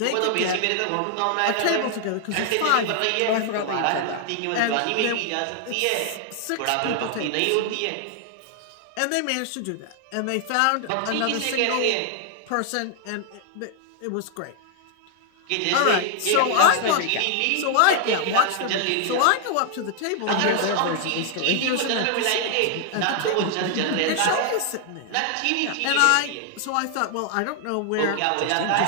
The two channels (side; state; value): both; different; correlation 0.00